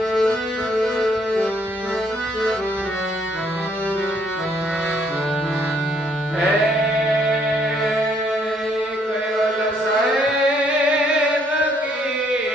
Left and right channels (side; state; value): both; normal; correlation 0.67